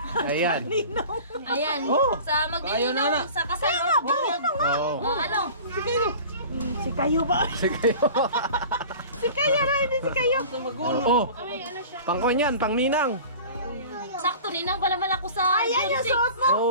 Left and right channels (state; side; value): inverted; both; correlation -0.40